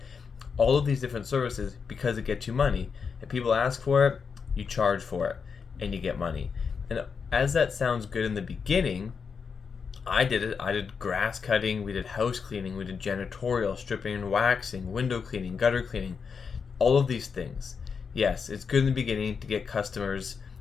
all of these different services because it gets you money. If people ask for it, you charge for it and you get money. And as that sounds good in the beginning, I did it. I did grass cutting, we did house cleaning, we did janitorial, stripping and waxing, window cleaning, gutter cleaning, all of these things. Yes, it's good in the beginning to get customers,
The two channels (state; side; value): quieter; right; 5.9 dB